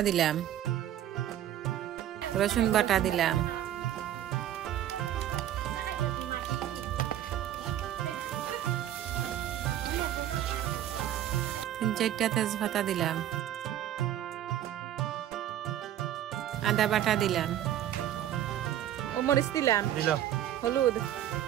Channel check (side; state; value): left; quieter; 11.7 dB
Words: দিলাম, রসুন বাটা দিলাম, চারটা তেজপাতা দিলাম, আদা বাটা দিলাম, মরিচ দিলাম, হলুদ